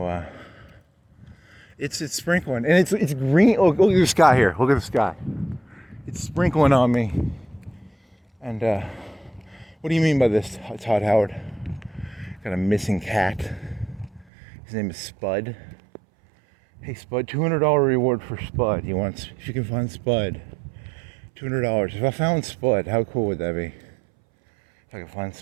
it's sprinkling, and it's green. Oh, look at the sky here. Look at the sky. It's sprinkling on me. And what do you mean by this, Todd Howard? Got a missing cat. His name is Spud. Hey Spud, $200 reward for Spud. If you can find Spud, $200. If I found Spud, how cool would that be? If I could find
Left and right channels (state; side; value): drops out; left; at 14.2 s